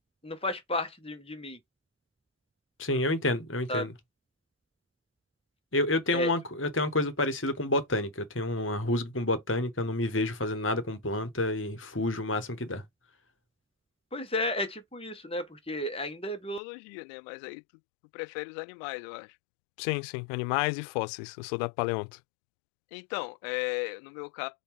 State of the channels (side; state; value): right; drops out; at 16.6 s